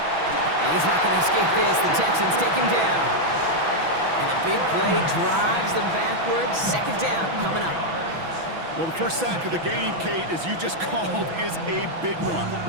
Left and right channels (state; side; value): late; left; 6.0 ms